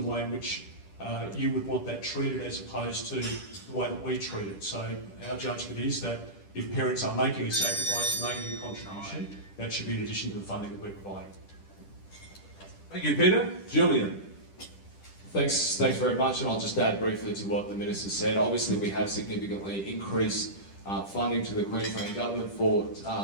the way in which you would want that treated as opposed to the way that we treat it. So our judgment is that if parents are making a sacrifice and making a contribution, that should be in addition to the funding that we're providing. Thank you, Peter. Julian. Thanks very much, and I'll just add briefly to what the Minister said. Obviously, we have significantly increased funding to the Queensland Government for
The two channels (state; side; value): late; right; 10 ms